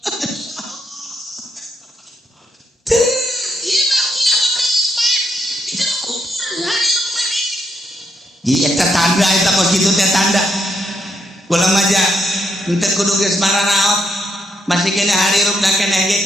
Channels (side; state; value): both; normal; correlation 0.77